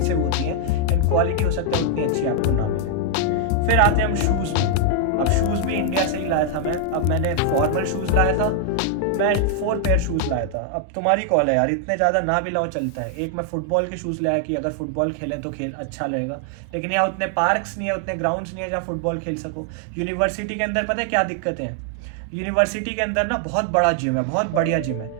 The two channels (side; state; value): both; different; correlation 0.00